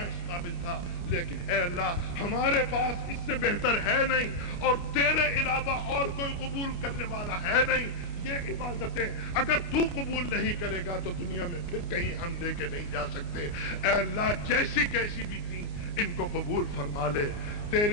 اس قابل تھا، لیکن اے اللہ ہمارے پاس اس سے بہتر ہے نہیں، اور تیرے علاوہ اور کوئی قبول کرنے والا ہے نہیں۔ یہ عبادتیں اگر تو قبول نہیں کرے گا تو دنیا میں پھر کہیں ہم لے کے نہیں جا سکتے۔ اے اللہ جیسی کیسی بھی تھی ان کو قبول فرما لے۔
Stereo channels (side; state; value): right; late; 29 ms